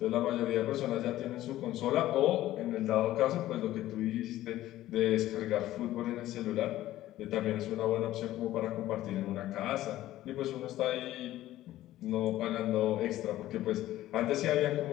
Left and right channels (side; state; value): right; quieter; 14.6 dB